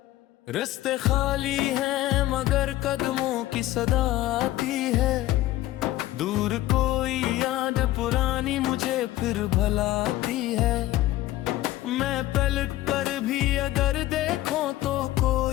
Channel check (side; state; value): right; quieter; 15.7 dB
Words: रास्ते खाली हैं मगर कदमों की सदा आती है, दूर कोई याद पुरानी मुझे फिर भलाती है। मैं पलट कर भी अगर देखूं तो